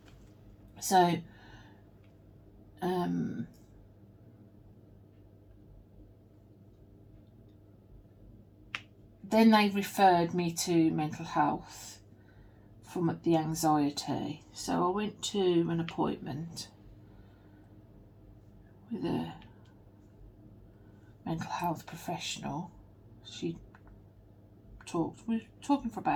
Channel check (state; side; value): identical; both; correlation 1.00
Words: so. Then they referred me to mental health from the anxiety. So I went to an appointment with a mental health professional. We were talking for